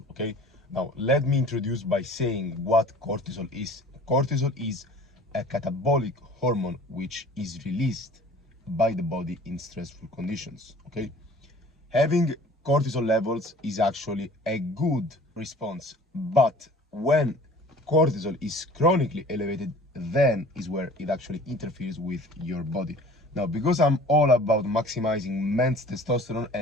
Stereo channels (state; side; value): normal; both; correlation 0.47